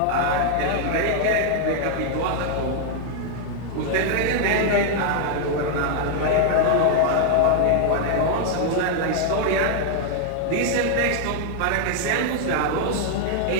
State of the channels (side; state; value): both; different; correlation 0.00